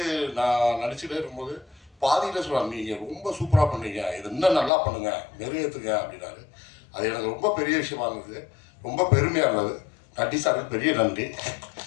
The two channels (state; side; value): drops out; right; at 4.7 s